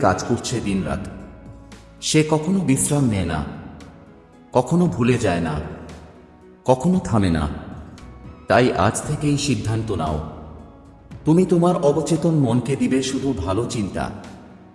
কাজ করছে দিনরাত। সে কখনো বিশ্রাম নেয় না, কখনো ভুলে যায় না, কখনো থামে না। তাই আজ থেকেই সিদ্ধান্ত নাও, তুমি তোমার অবচেতন মনকে দিবে শুধু ভালো চিন্তা,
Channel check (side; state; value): both; identical; correlation 1.00